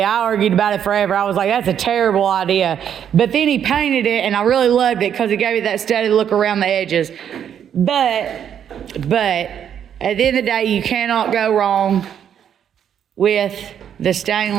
I argued about it forever. I was like, that's a terrible idea. But then he painted it, and I really loved it because it gave me that steady look around the edges. But at the end of the day, you cannot go wrong with the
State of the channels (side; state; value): left; quieter; 9.0 dB